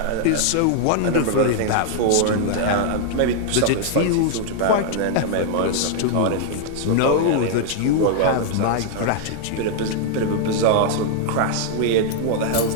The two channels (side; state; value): both; different; correlation -0.01